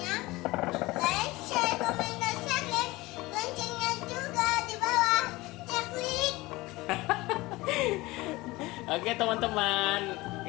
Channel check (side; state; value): right; quieter; 20.5 dB